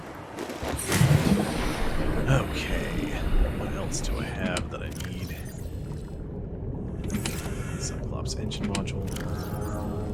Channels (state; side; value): identical; both; correlation 1.00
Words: Okay, what else do I have that I need? Cyclops engine module.